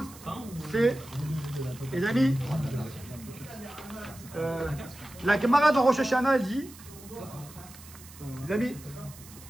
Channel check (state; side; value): noise; right; hiss, 19 dB below the sound